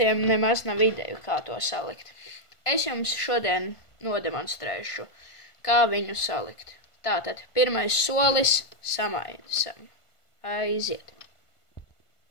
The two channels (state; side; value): late; right; 1.5 ms